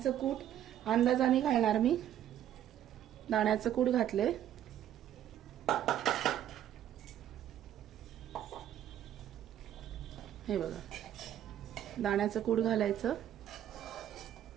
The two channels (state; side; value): quieter; left; 11.2 dB